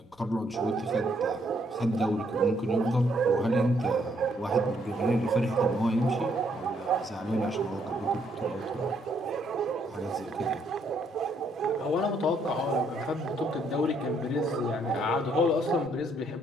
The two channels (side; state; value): both; normal; correlation 0.71